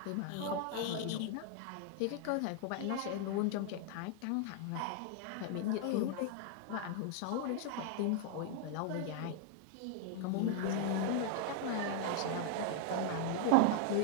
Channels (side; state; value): both; different; correlation 0.00